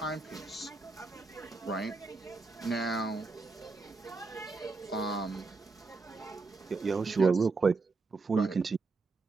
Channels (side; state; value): left; quieter; 3.9 dB